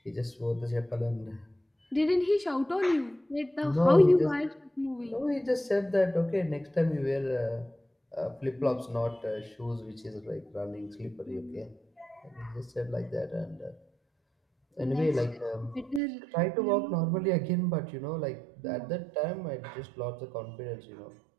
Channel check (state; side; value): drops out; left; at 16.0 s